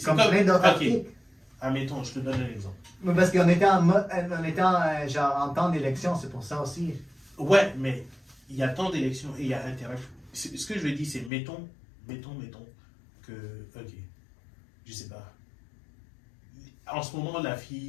comme plein d'autres articles. Admettons, je te donne un exemple. Mais parce qu'on était en temps d'élection, c'est pour ça aussi. Ouais, mais il y a temps d'élection et il y a intérêt. Ce que je veux dire, c'est mettons que, ok, je sais pas. En ce moment, la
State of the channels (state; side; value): drops out; right; at 11.3 s